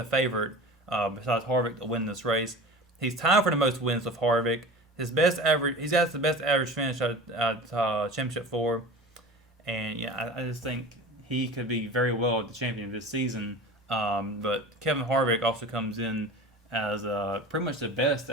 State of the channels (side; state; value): both; normal; correlation 0.35